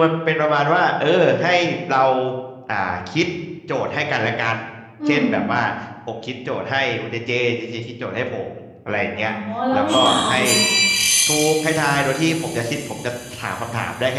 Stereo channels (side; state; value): both; identical; correlation 1.00